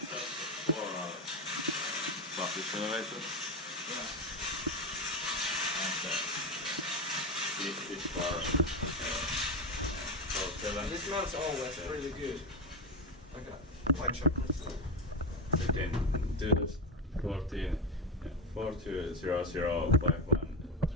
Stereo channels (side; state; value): both; normal; correlation 0.14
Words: Fixtures elevator. Yeah. And this bar. And it smells always really good. Like a white chocolate. 2014